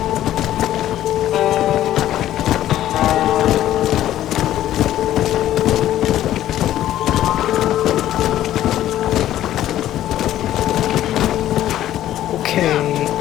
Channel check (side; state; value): right; quieter; 12.8 dB